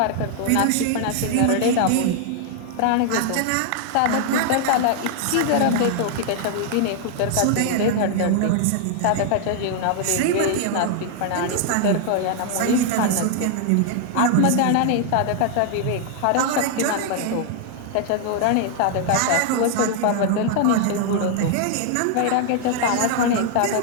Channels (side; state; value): both; different; correlation 0.00